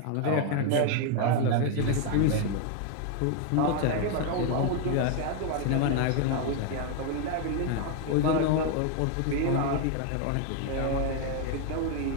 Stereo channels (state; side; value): different; both; correlation 0.00